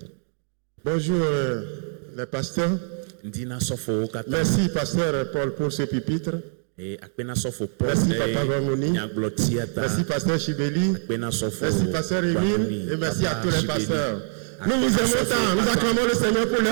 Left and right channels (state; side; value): silent; left; digital silence